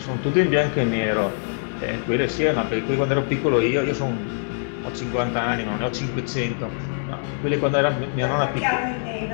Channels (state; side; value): silent; right; 63 dB below the other